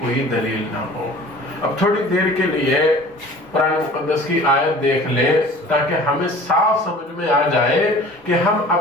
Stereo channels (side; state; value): both; normal; correlation 0.45